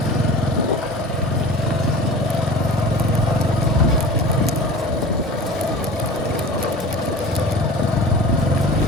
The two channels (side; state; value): both; normal; correlation 0.38